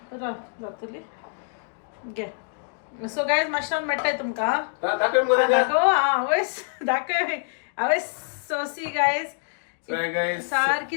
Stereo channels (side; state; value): right; silent; digital silence